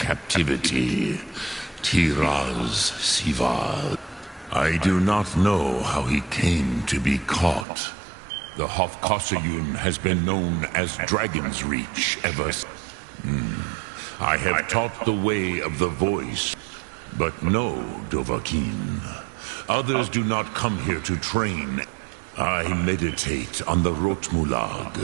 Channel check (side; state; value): left; drops out; at 7.7 s